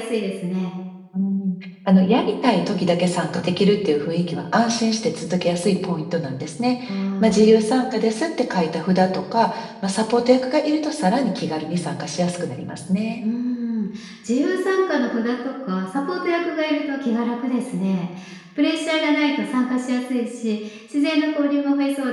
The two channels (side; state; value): both; identical; correlation 1.00